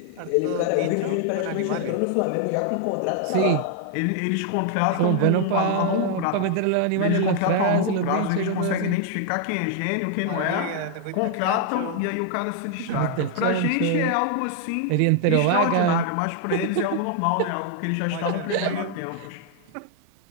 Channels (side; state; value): both; different; correlation 0.00